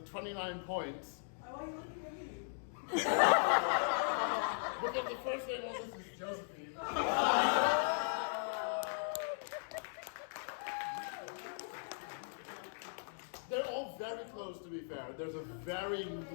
29 points. Why are you looking at me? Because the first name on this is Josephine. They're all very close, to be fair. There's a very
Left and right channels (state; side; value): silent; right; digital silence